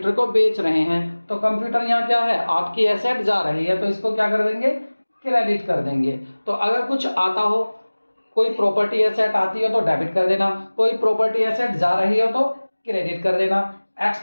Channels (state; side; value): inverted; both; correlation -1.00